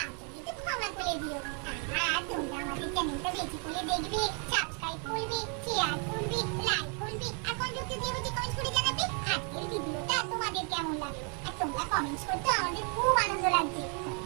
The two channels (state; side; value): quieter; left; 38.6 dB